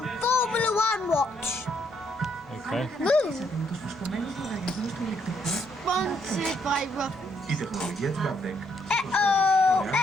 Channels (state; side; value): normal; both; correlation 0.72